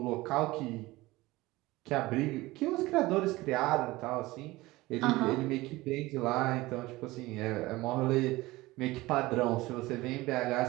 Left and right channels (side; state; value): left; quieter; 19.8 dB